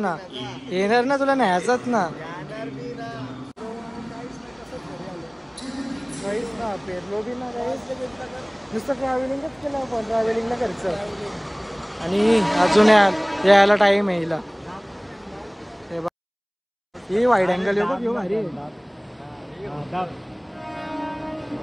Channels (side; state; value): both; identical; correlation 1.00